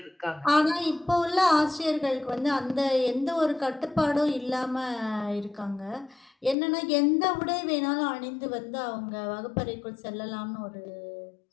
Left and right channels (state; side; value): drops out; right; at 6.6 s